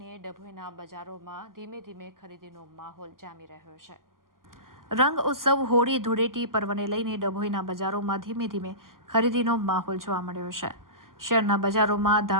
ડભોઈના બજારોમાં ધીમે ધીમે ખરીદીનો માહોલ જામી રહ્યો છે। રંગ ઉત્સવ હોળી ધૂળેટી પર્વને લઈને ડભોઈના બજારોમાં ધીમે ધીમે ખરીદીનો માહોલ જોવા મળ્યો છે। શહેરના બજારોમાં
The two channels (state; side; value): late; left; 0.91 ms